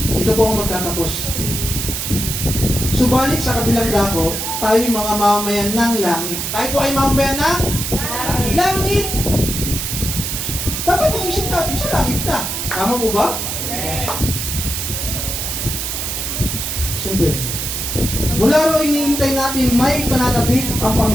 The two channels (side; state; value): right; noise; hiss, 3 dB below the sound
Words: Dito po ako magtatapos. Subalit sa kabilang dako, tayo'y mga mamamayan ng langit. Tayo po ay mamamayan ng langit. Dapat yung isip natin sa langit na. Tama po ba? Siyempre. Mula ro iniintay natin may pananabik ang